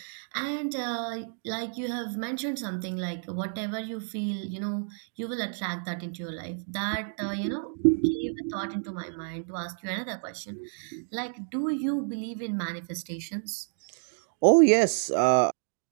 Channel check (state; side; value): silent; left; 58 dB below the other